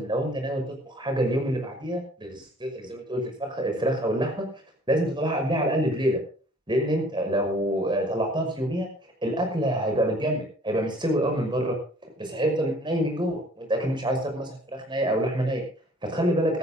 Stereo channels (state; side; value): normal; both; correlation 0.54